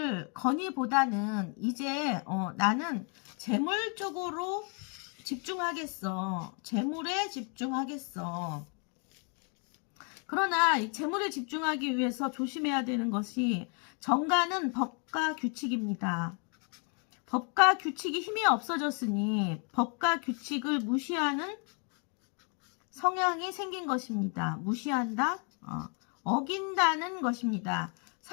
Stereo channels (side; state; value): right; quieter; 38.3 dB